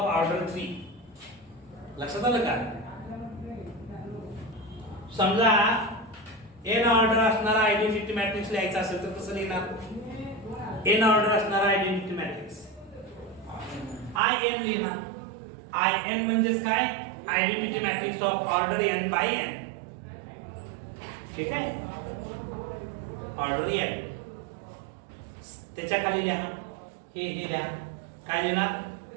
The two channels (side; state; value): left; drops out; at 14.2 s